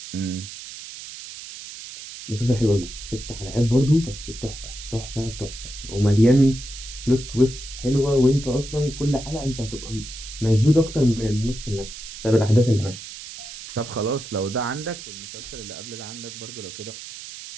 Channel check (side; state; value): right; noise; hiss, 12 dB below the sound